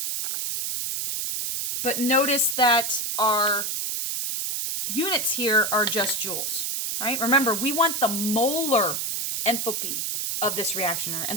But notice that our units here are just joules, right? Remember, we want the molar enthalpy of this reaction, or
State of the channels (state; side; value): noise; right; hiss, 2 dB below the sound